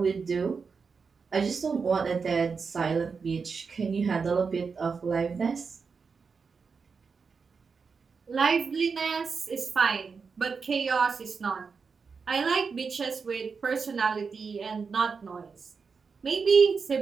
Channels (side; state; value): left; quieter; 5.3 dB